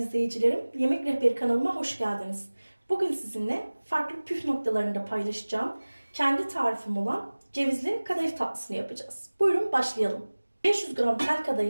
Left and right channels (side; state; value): both; inverted; correlation -1.00